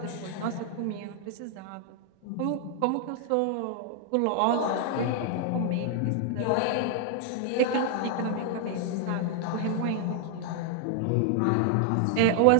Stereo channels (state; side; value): different; both; correlation 0.00